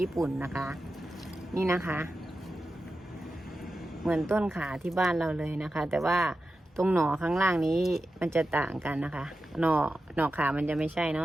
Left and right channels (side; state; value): both; normal; correlation 0.92